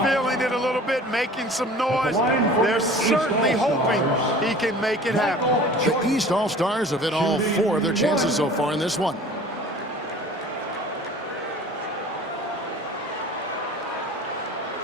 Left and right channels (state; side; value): normal; both; correlation 0.44